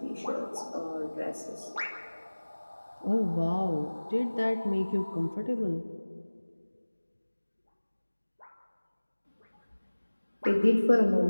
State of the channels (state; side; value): inverted; both; correlation -1.00